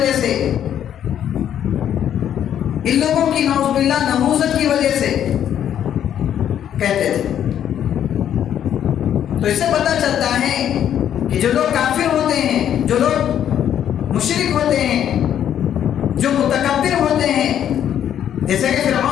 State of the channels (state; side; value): quieter; right; 10.0 dB